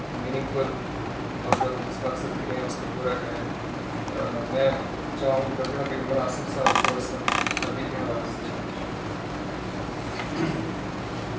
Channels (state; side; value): identical; both; correlation 1.00